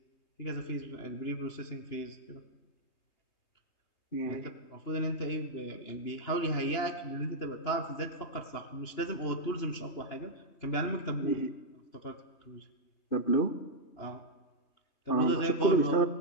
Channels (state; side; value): late; right; 2.9 ms